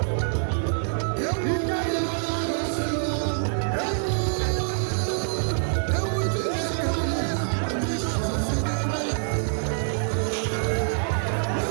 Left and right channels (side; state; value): left; silent; 61 dB below the other